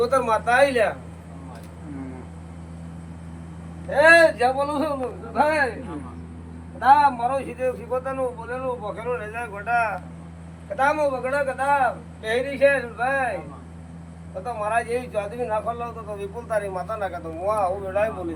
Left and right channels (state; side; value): identical; both; correlation 1.00